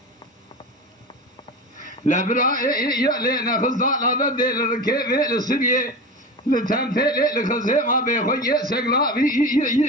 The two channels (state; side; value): normal; both; correlation 0.27